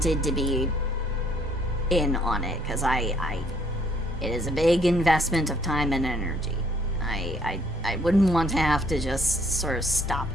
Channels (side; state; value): both; normal; correlation 0.64